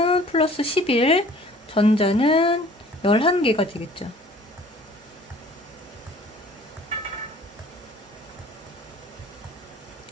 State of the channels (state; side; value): normal; both; correlation 0.51